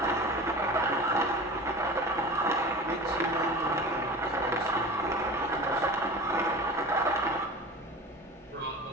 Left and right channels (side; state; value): both; normal; correlation 0.34